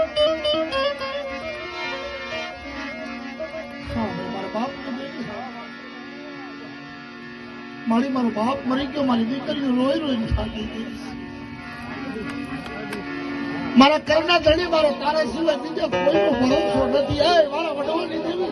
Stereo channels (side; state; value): both; identical; correlation 1.00